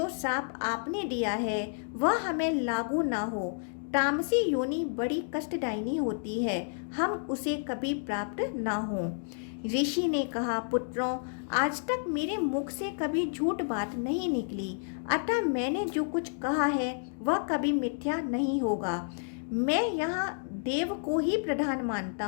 शाप आपने दिया है वह हमें लागू ना हो। तामसी योनि बड़ी कष्टदायिनी होती है, हम उसे कभी प्राप्त ना हो। ऋषि ने कहा, पुत्रों, आज तक मेरे मुख से कभी झूठ बात नहीं निकली, अतः मैंने जो कुछ कहा है वह कभी मिथ्या नहीं होगा। मैं यहाँ देव को ही प्रधान मानता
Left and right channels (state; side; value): silent; right; digital silence